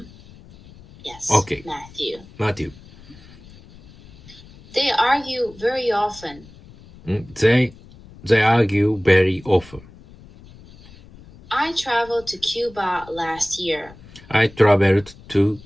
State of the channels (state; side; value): noise; left; rumble, 22 dB below the sound